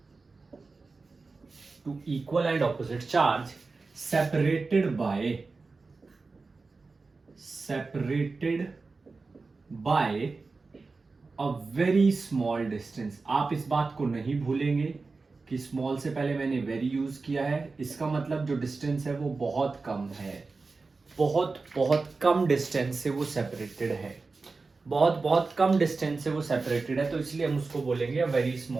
To equal and opposite charge separated by a very small distance. आप इस बात को नहीं भूलेंगे कि small से पहले मैंने वेरी यूज किया है। इसका मतलब जो डिस्टेंस है वो बहुत कम है, बहुत बहुत कम डिस्टेंस से वो सेपरेटेड है, बहुत कम डिस्टेंस से वो सेपरेटेड है, तो इसलिए हम उसको बोलेंगे अ वेरी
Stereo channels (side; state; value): left; quieter; 4.0 dB